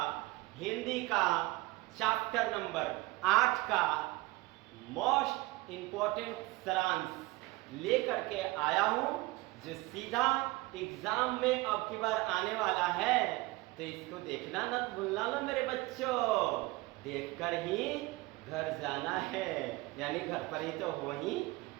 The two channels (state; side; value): quieter; left; 21.2 dB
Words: हिंदी का चैप्टर नंबर 8 का मोस्ट इम्पोर्टेंट सारांश लेकर के आया हूं, जो सीधा एग्जाम में अब की बार आने वाला है। तो इसको देखना न भूलना लो मेरे बच्चों, देखकर ही घर जाना है, यानी घर पर ही तो हो ही